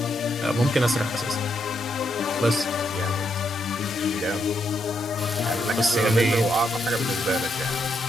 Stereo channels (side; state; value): both; normal; correlation 0.79